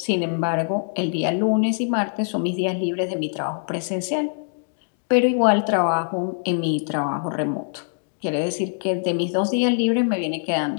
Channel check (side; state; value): right; silent; digital silence